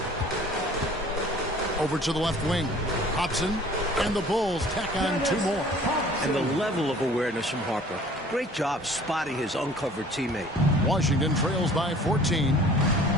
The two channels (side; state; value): both; normal; correlation 0.50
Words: Over to the left wing. Hobson and the Bulls tack on 2 more. And the level of awareness from Harper. Great job spotting his uncovered teammate. Washington trails by 14.